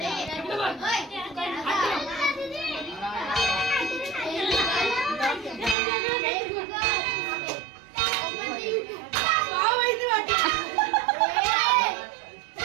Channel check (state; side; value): drops out; left; at 5.8 s